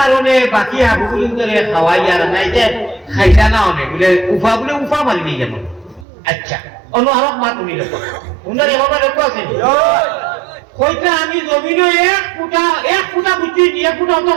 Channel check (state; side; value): drops out; left; at 6.1 s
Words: বাকি আবুগুলিন করে খাওয়াই আর নাই যে খাইতা না অনেক বলে উফা মারি নিয়ে যেমন আচ্ছা অন্য আরো মা তুমি লোক উনার এভাবে লোক আছে কইটা আমি জমিনে এক ফুটা বুঝছি 1 ফুটা অত